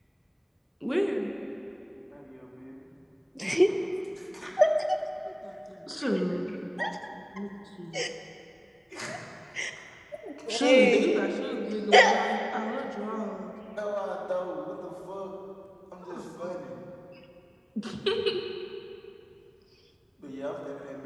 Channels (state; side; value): identical; both; correlation 1.00